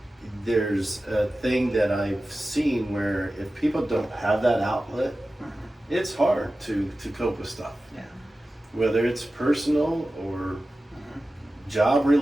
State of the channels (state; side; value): normal; both; correlation 0.95